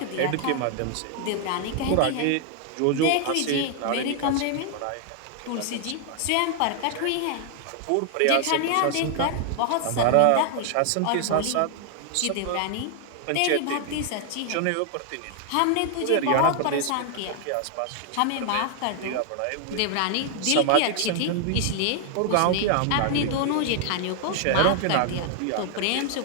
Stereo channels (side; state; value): both; different; correlation 0.00